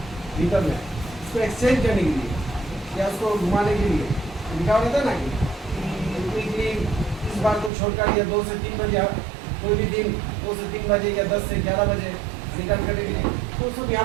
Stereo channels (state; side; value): drops out; left; at 7.7 s